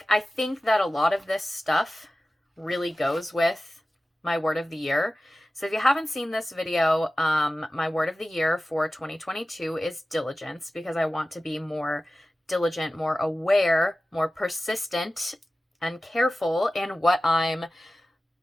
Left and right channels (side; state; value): both; normal; correlation 0.95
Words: I think that a lot of this stuff really goes with my word of the year. So if you haven't seen this video, my word of the year for 2022 is diligence, because I want to be more diligent, more aware, more persistent, and careful in what I'm